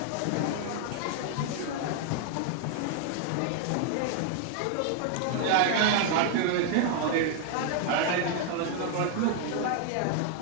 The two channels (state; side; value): different; both; correlation 0.00